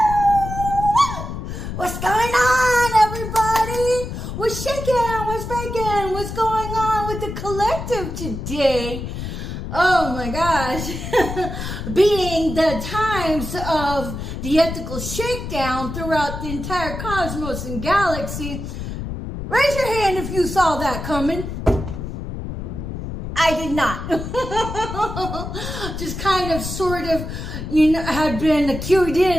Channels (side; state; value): left; noise; rumble, 6 dB below the sound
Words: What's going on, everybody? What's shaking? What's baking? What's going on with the collective today? Oh my gosh. Being the times of the ethical shakedown throughout the entire cosmos and galaxy, raise your hand if you saw that coming. I did not. Just kind of sort of, had been cued